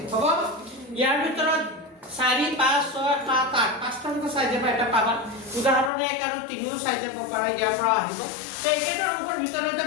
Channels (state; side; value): drops out; right; at 5.9 s